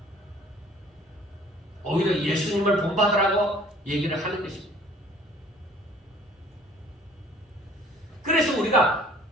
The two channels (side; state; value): both; normal; correlation 0.53